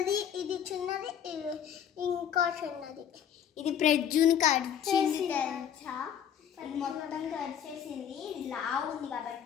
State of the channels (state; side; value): quieter; right; 9.0 dB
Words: ఇది చిన్నది, ఇంకో చిన్నది. ఇది ప్రజ్జుని కరిచేసింది తెలుసా? ఇది మొత్తం కరిచేసింది. ఇది లావు ఉంది